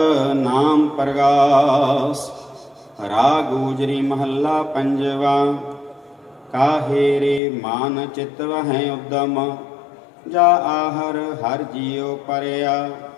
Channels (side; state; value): right; drops out; at 7.4 s